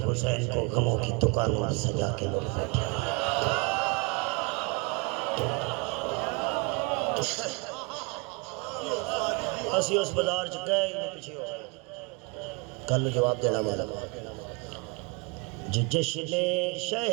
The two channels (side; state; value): left; quieter; 30.5 dB